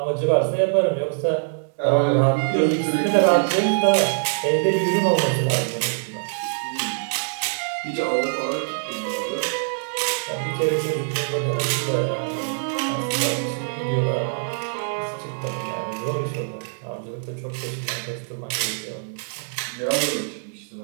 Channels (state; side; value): silent; left; digital silence